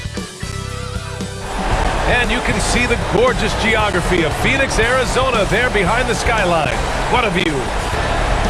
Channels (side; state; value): both; identical; correlation 1.00